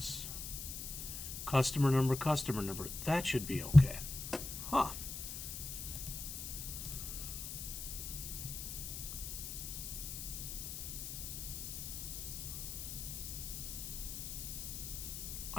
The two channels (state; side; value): noise; left; hiss, 6 dB below the sound